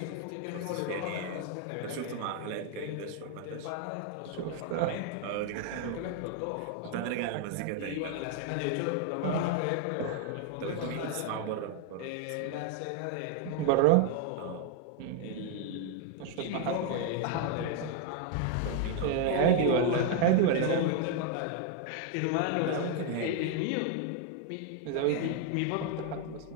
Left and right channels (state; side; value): different; both; correlation 0.00